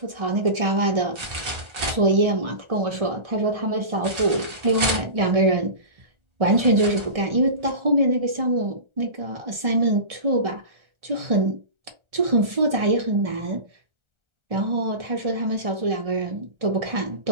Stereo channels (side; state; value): left; late; 1.4 ms